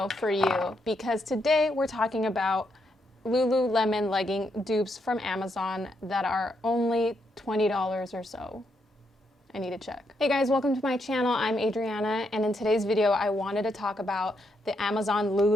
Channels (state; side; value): normal; both; correlation 0.79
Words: for you, because today we're talking about Lululemon legging dupes from Amazon that are only $20 or so. I need to check. Hey guys, welcome to my channel. I'm Adriana, and in today's video I wanted to talk about the Amazon